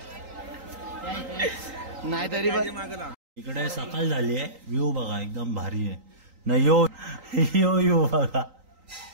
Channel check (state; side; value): late; left; 3.8 ms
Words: नाही तरी पण इकडे सकाळ झाली आहे. व्ह्यू बघा एकदम भारी आहे ना. यो यो यो बघा.